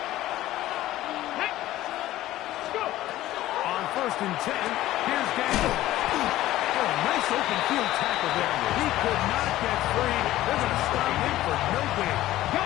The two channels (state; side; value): quieter; right; 15.1 dB